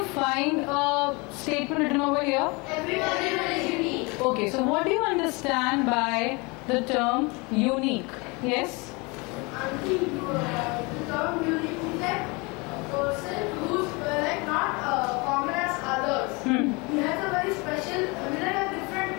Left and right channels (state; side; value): quieter; right; 27.6 dB